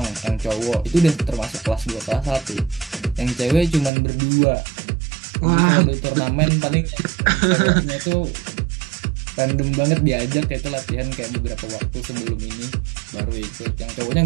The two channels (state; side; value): drops out; left; at 3.9 s